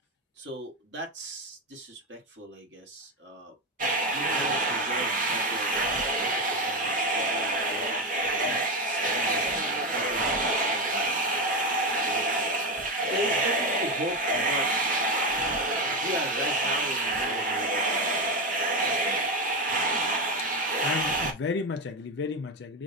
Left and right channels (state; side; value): normal; both; correlation 0.14